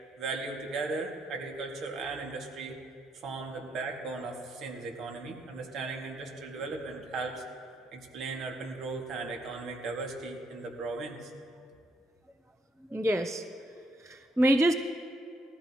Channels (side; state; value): both; normal; correlation 0.74